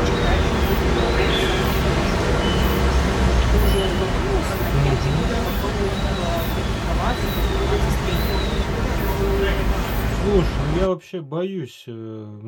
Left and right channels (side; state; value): both; identical; correlation 1.00